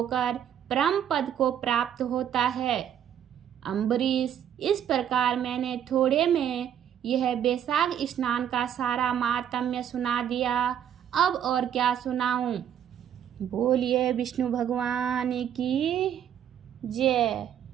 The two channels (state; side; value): quieter; left; 9.5 dB